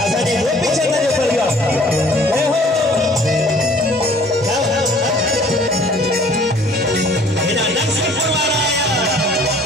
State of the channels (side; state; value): both; normal; correlation 0.54